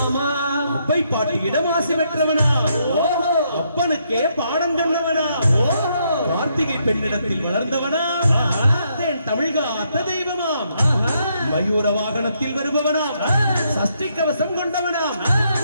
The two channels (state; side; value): inverted; both; correlation -0.75